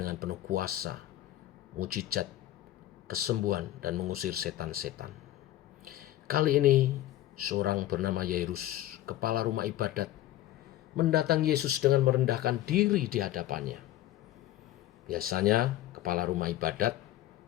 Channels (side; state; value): right; quieter; 14.1 dB